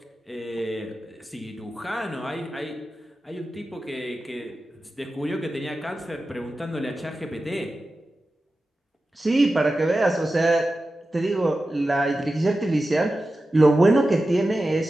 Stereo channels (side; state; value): both; normal; correlation 0.93